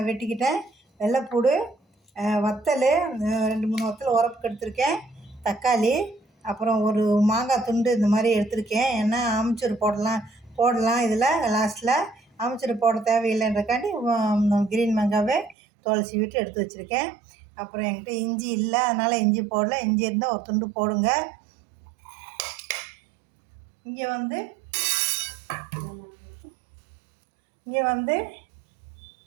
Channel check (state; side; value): drops out; left; at 15.6 s